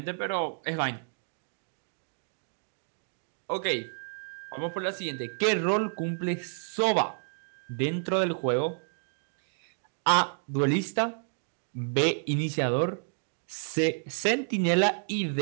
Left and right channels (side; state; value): left; silent; digital silence